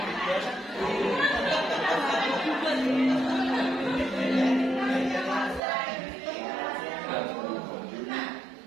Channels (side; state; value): left; drops out; at 5.6 s